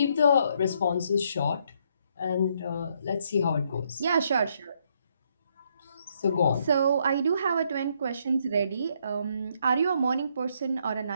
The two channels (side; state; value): both; inverted; correlation -0.72